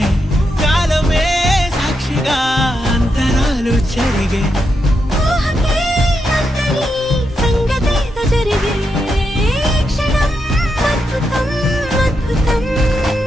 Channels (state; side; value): normal; both; correlation 0.84